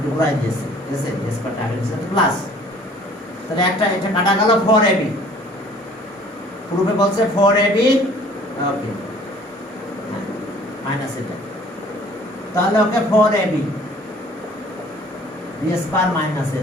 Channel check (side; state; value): both; normal; correlation 0.53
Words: তো ঘুরাই দিয়েছি, ঠিক আছে b স্কয়ারটা আগে লিখছে প্লাস, তাহলে একটা এটা কাটা গেল 4ab, প্রুফে বলছে 4ab, ওকে মাইনাস এটা, তাহলে okay 4ab b square minus a